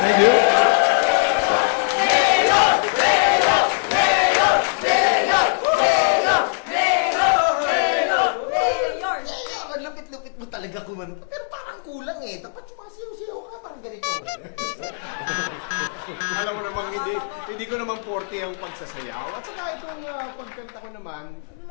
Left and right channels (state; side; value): silent; right; digital silence